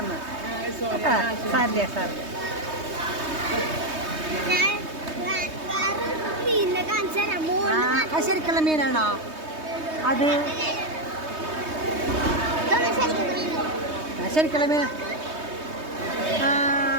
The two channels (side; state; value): left; late; 3.2 ms